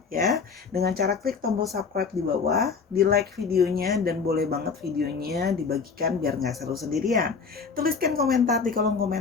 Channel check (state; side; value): quieter; right; 5.4 dB